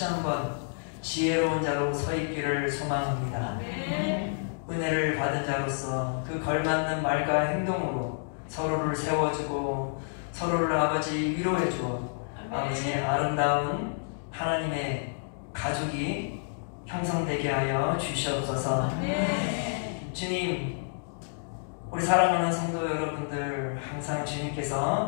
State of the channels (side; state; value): right; silent; digital silence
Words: 한번 지혜로운 자로 서 있기를 소망합니다. 은혜를 받은 자로서 그 걸맞는 말과 행동으로 서로를 세워주고 서로를 아버지 위로해주어 아버지 아름다운 하나님의 가족이 형성되게 하여 주시옵소서. 주님, 우리 사랑하는 성도 여러분들 항상